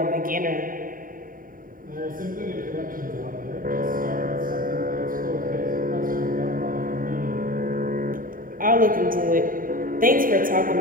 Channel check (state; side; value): late; left; 0.41 ms